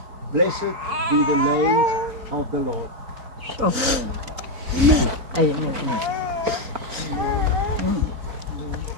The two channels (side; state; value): left; late; 3.9 ms